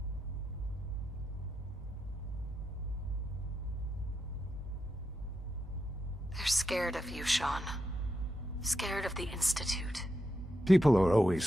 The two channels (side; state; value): both; normal; correlation 0.85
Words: They're scared of you, Sean. Scared of the Institute. People are